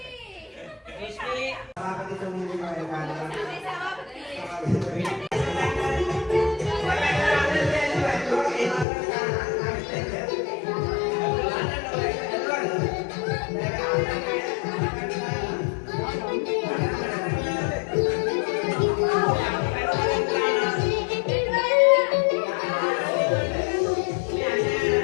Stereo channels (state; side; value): drops out; right; at 8.8 s